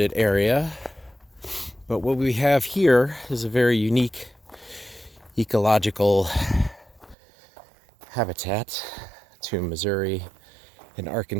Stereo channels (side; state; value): left; drops out; at 7.2 s